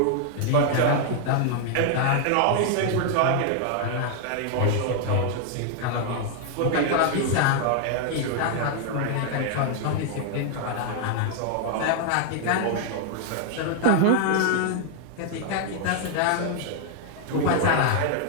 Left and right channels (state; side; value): different; both; correlation 0.00